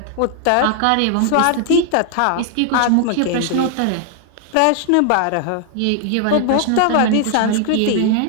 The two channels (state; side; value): different; both; correlation 0.00